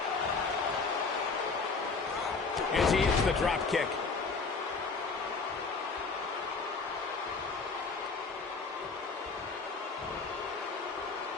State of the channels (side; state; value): right; quieter; 4.4 dB